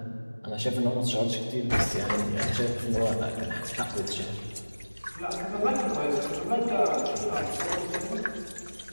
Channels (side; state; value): both; inverted; correlation -1.00